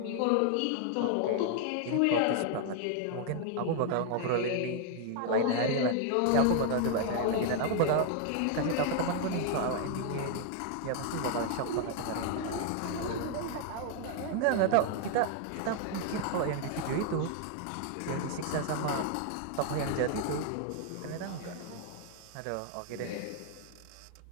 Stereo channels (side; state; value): both; different; correlation 0.00